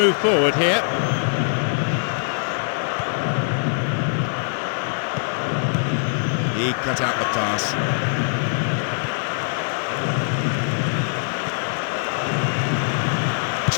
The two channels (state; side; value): silent; right; digital silence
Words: forward here. He cut out the pass.